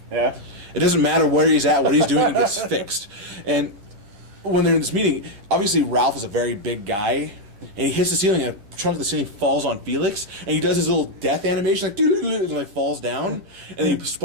Yeah. It doesn't matter where he's at, what he's doing, it gets fixed. And when they're in this meeting, obviously Ralph is a very big guy, and he hits the ceiling, and a chunk of the ceiling falls on Felix, and he does his little death animation, like and like falls down, and then he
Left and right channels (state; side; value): late; left; 10 ms